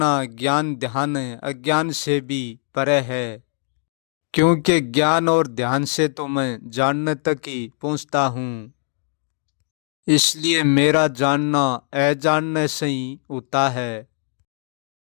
ज्ञान ध्यान अज्ञान से भी परे है। क्योंकि ज्ञान और ध्यान से तो मैं जानने तक ही पहुँचता हूँ, इसलिए मेरा जानना अजानने से ही होता है।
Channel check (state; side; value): silent; right; 64 dB below the other